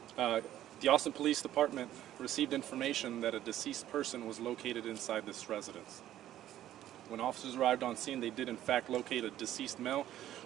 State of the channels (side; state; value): left; quieter; 12.6 dB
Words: The Austin Police Department received information that a deceased person was located inside this residence. When officers arrived on scene, they did in fact locate a deceased male